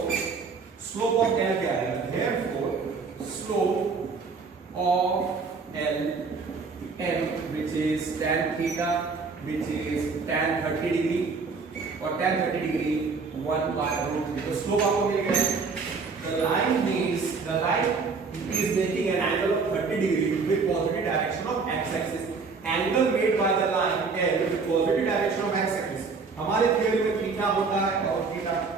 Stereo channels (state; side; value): quieter; left; 4.7 dB